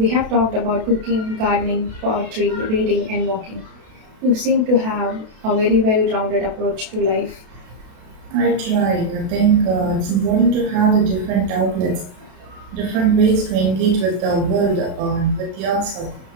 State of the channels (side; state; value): left; late; 32 ms